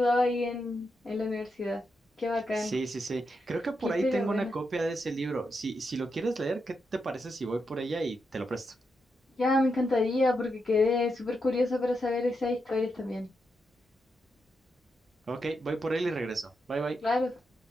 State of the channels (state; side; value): normal; both; correlation 0.84